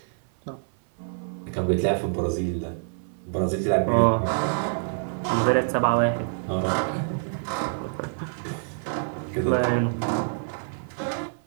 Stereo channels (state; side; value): silent; left; 56 dB below the other